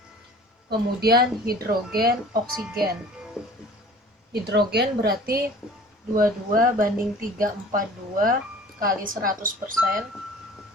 Kemudian hidrogen, oksigen. Hidrogen berarti 22 banding 342 kali 100%.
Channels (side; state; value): both; normal; correlation 0.46